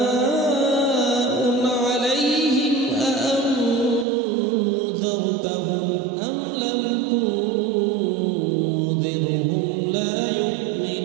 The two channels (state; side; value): drops out; left; at 4.0 s